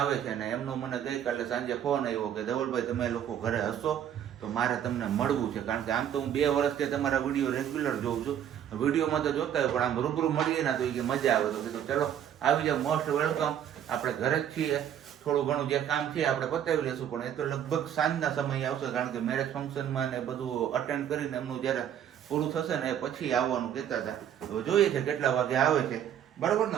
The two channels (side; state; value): left; quieter; 9.8 dB